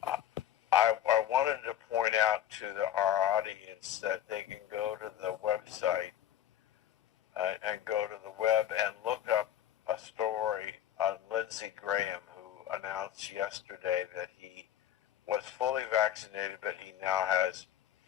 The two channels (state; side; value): quieter; right; 11.3 dB